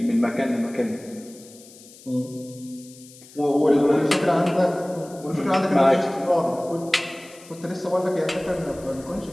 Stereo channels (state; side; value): noise; left; hiss, 21 dB below the sound